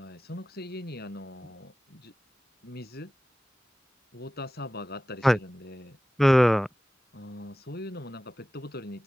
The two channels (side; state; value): both; normal; correlation 0.96